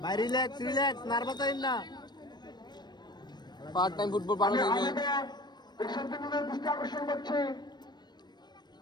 ভাই রিল্যাক্স নার্ভাস হইন না। পার্ট টাইম ফুটবল বানানো যাবে, আকর্ষণ করছে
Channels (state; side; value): late; right; 0.21 ms